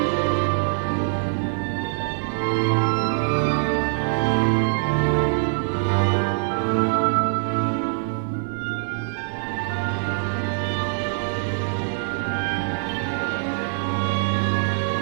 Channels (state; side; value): silent; left; digital silence